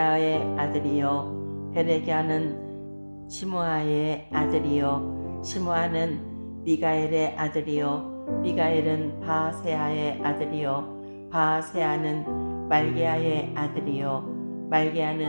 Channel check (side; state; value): both; inverted; correlation -1.00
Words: 아들이요 베레갸는 시므아의 아들이요 시므아는 미가엘의 아들이요 미가엘은 바세아의 아들이요 바세아는 말게아의 아들이요